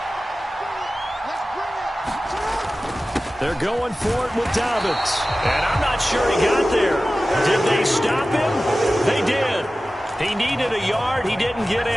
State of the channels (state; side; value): normal; both; correlation 0.96